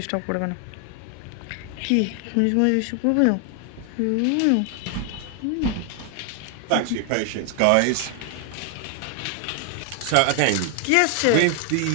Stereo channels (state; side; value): different; both; correlation 0.00